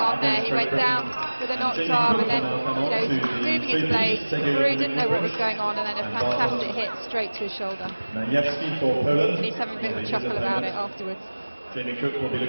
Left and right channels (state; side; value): inverted; both; correlation -1.00